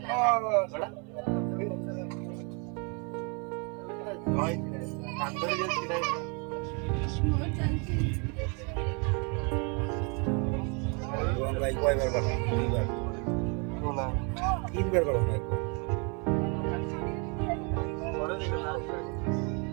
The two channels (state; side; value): quieter; left; 34.5 dB